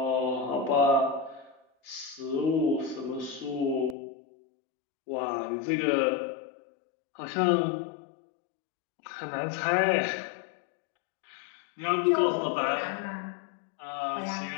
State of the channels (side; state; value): right; drops out; at 4.0 s